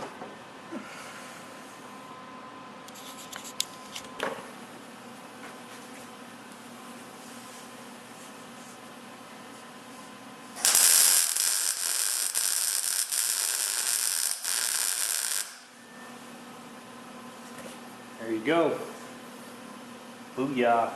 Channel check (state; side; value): identical; both; correlation 1.00